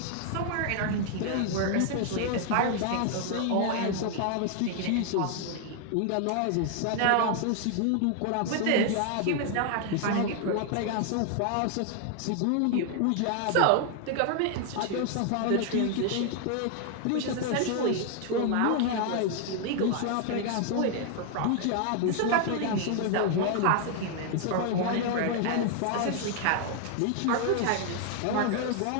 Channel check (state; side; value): different; both; correlation 0.00